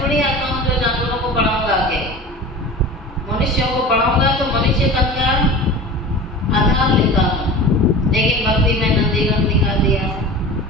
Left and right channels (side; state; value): both; normal; correlation 0.35